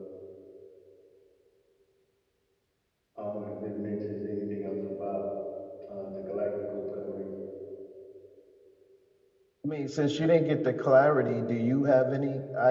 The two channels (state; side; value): identical; both; correlation 1.00